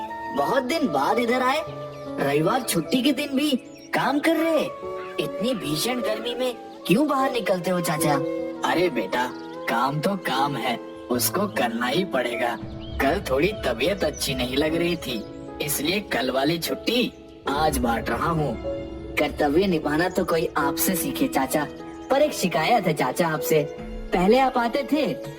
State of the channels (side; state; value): both; identical; correlation 1.00